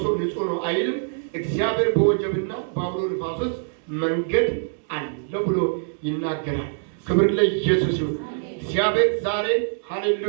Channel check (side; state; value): left; silent; digital silence